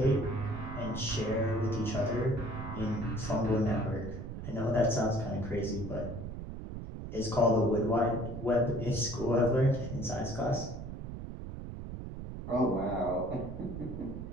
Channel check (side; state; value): right; noise; rumble, 8 dB below the sound